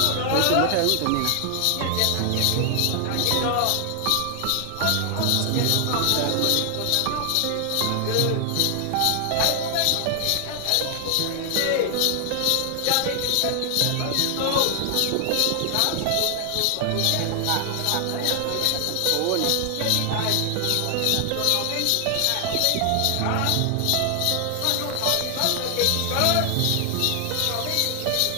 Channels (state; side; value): different; both; correlation 0.00